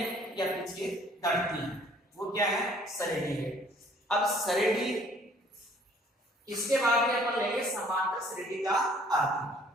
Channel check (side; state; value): both; normal; correlation 0.58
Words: या पीछे घटती हैं, वो क्या है? श्रेणी है। अब श्रेणी, इसके बाद में अपन लेंगे समांतर श्रेणी का